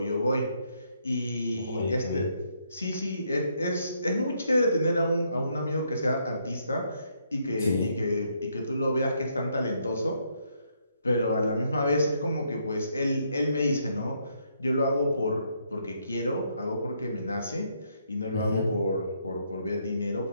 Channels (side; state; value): both; inverted; correlation -0.74